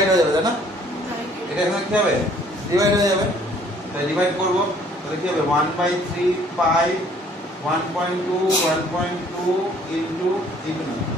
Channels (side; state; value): both; normal; correlation 0.59